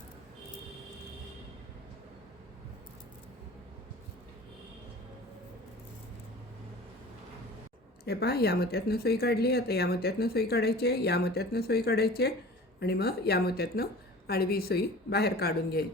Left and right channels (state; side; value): normal; both; correlation 0.41